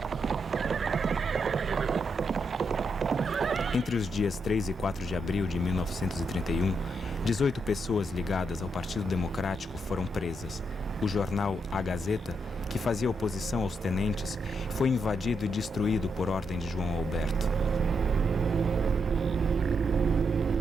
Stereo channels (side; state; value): both; normal; correlation 0.81